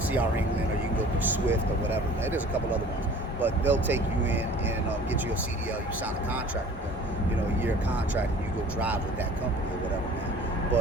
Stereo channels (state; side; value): normal; both; correlation 0.47